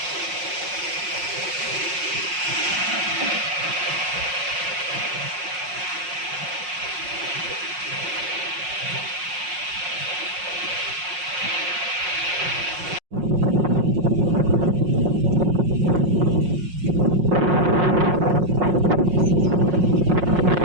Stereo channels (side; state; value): left; late; 5.5 ms